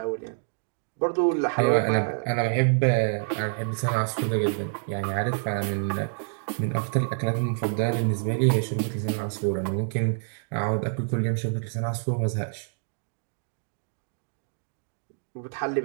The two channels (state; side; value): silent; left; digital silence